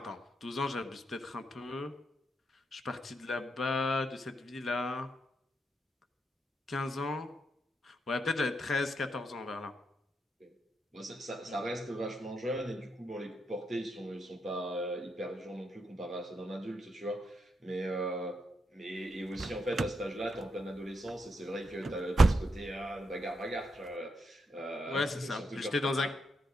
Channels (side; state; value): both; normal; correlation 0.81